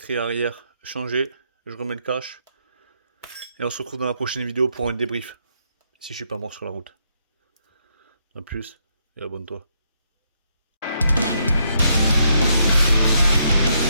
arrière changé, je remets le cache. Et on se retrouve dans la prochaine vidéo pour un débrief. Si je suis pas mort sur la route. A plus et abonne-toi.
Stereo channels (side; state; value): both; inverted; correlation -0.76